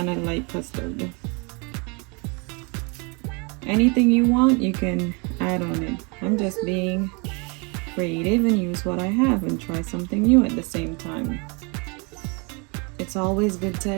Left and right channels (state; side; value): quieter; left; 31.5 dB